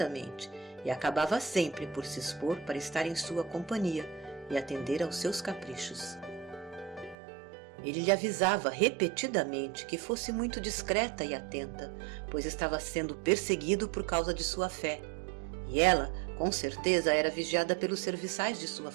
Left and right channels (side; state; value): left; drops out; at 7.2 s